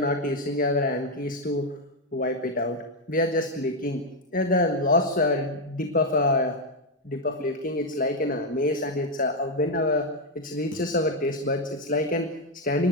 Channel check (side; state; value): both; normal; correlation 0.04